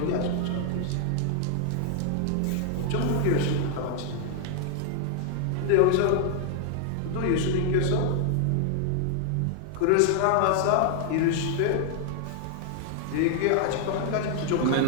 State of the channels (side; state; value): both; different; correlation 0.00